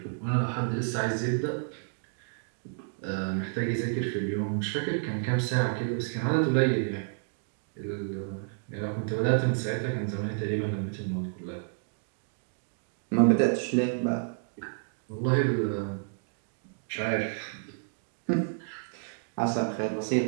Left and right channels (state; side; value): silent; left; digital silence